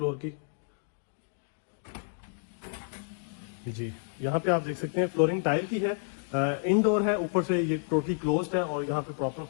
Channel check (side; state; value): right; silent; digital silence